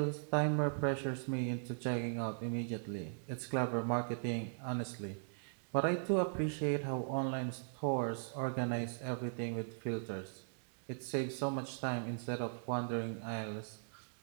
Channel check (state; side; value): silent; left; digital silence